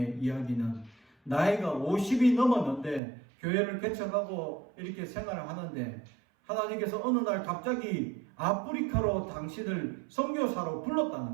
이야기는 나이가 50이 넘었는데 교회를 개척하고 이렇게 생활을 하는데 하나님께서 어느 날 갑자기 아프리카로 당신을 선교사로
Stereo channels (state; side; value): drops out; left; at 3.0 s